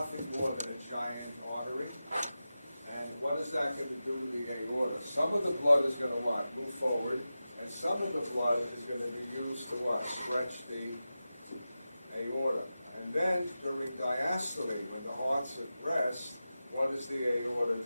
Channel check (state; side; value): inverted; both; correlation -0.93